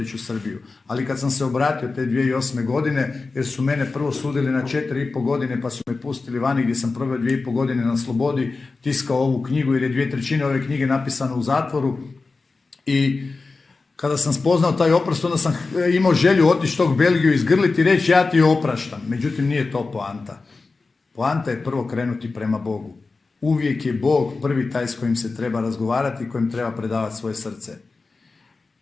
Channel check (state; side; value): quieter; right; 3.9 dB